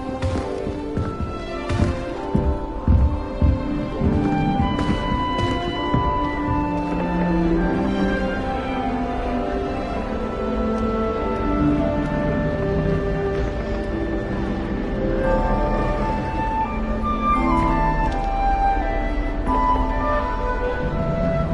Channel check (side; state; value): both; identical; correlation 1.00